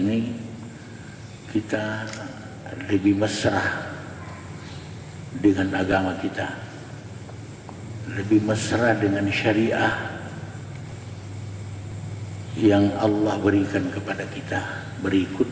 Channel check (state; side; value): identical; both; correlation 1.00